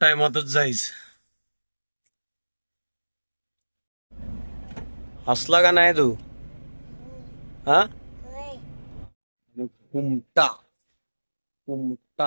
जायचं. हसला का नाही तू? हा,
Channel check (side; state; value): both; inverted; correlation -1.00